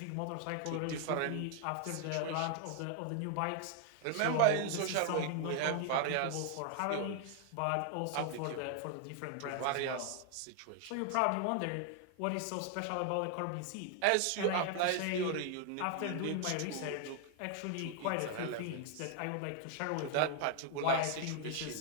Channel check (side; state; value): both; different; correlation 0.00